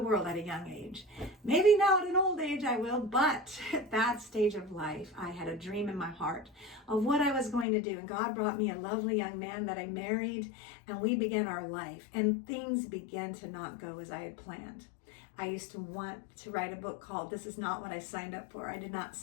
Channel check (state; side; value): drops out; right; at 7.7 s